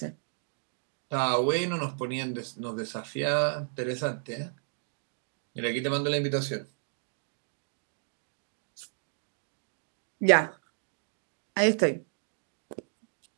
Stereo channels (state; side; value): silent; left; digital silence